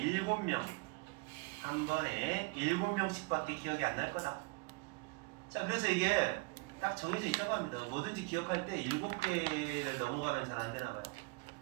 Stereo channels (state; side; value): quieter; left; 27.7 dB